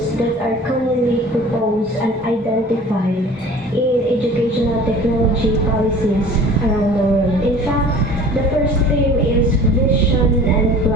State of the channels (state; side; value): normal; both; correlation 0.44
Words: that are commonly proposed and identified in educational technology policies around the world. In fact, the first theme is vision and